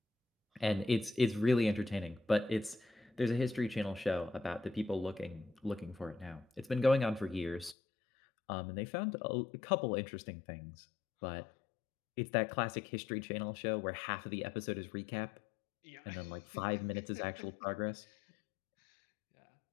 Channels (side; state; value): right; drops out; at 7.8 s